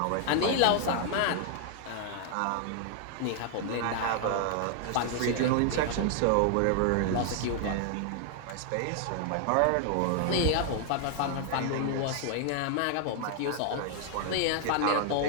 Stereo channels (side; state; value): both; different; correlation 0.00